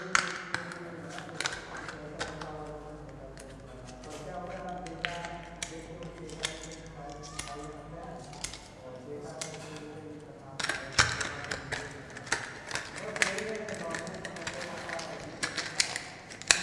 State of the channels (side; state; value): both; identical; correlation 1.00